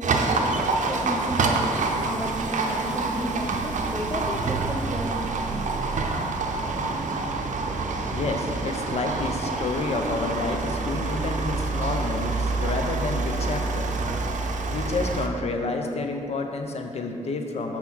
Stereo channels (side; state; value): both; normal; correlation 0.46